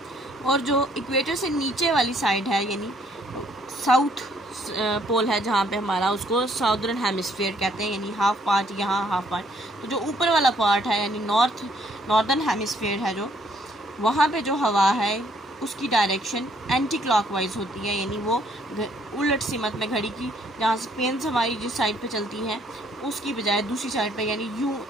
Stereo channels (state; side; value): normal; both; correlation 0.66